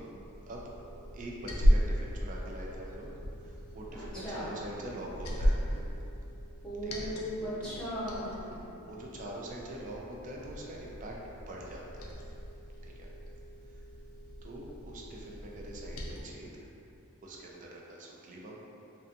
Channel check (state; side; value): normal; both; correlation 0.85